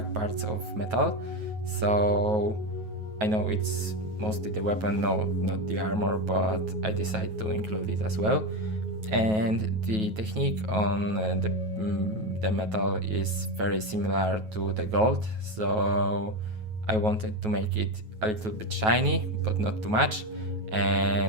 parts of metal. So I know it's mostly the weapon, no, not the armor, but I decided to include it as well. And the technique on the metal is very similar to the gold, so I wanted to make it a little bit shiny but not too much,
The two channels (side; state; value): left; late; 9.3 ms